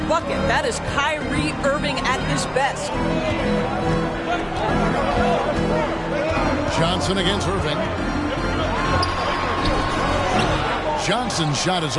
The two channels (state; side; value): identical; both; correlation 1.00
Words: bucket. That is Kyrie Irving at his best. Johnson against Irving. Johnson's shot is